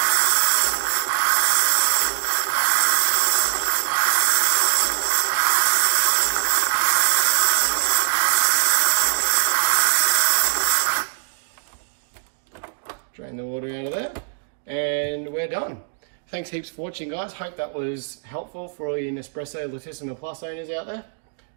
Drain the water out of there, and we're done. Thanks heaps for watching, guys. Hope that was helpful for all you Nespresso Lettissima Plus owners out there.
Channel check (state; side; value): silent; left; digital silence